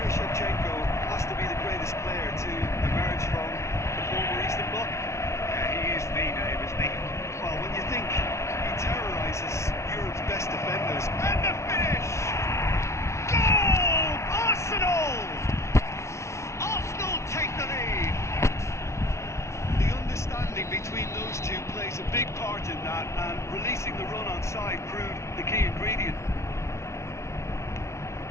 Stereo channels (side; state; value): right; late; 0.13 ms